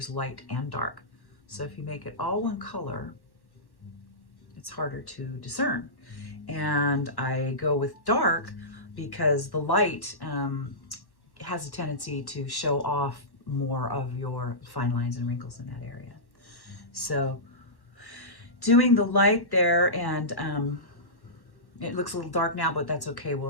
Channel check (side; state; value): right; late; 1.1 ms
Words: light and dark. So if you make it all one color, it's harder to discern. And I go with dark because the light has a tendency to show off more of your fine lines and wrinkles in that area. So doing the light there, and it looks a little dark now, but that's okay. We'll